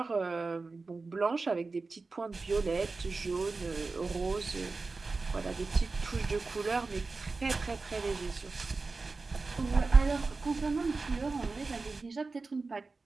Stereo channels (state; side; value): quieter; left; 3.9 dB